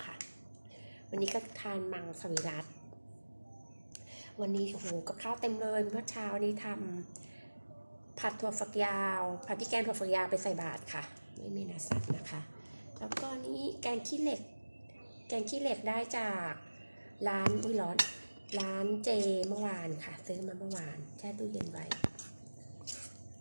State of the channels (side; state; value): both; inverted; correlation -1.00